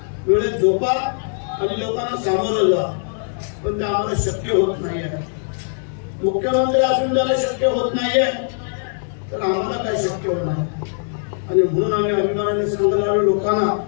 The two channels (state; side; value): silent; right; digital silence